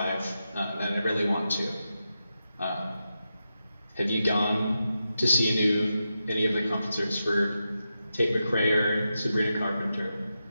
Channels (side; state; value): both; inverted; correlation -0.89